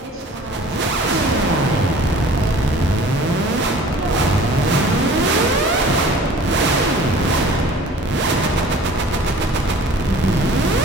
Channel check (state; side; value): normal; both; correlation 0.47